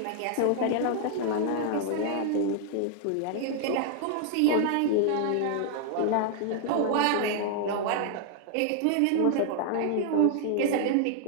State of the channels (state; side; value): different; both; correlation 0.00